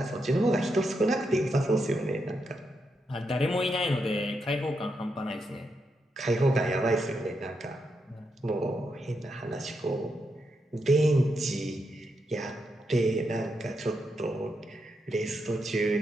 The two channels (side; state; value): both; normal; correlation 0.83